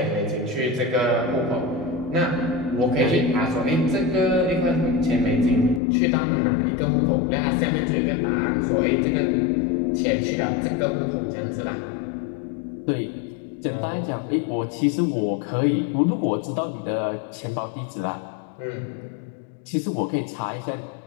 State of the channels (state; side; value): drops out; right; at 5.8 s